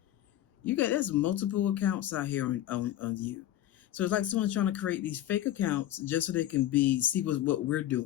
there's multiple accounts out here on you. So it's like someone trying to create these fake accounts just so they can see what we're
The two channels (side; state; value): right; quieter; 12.9 dB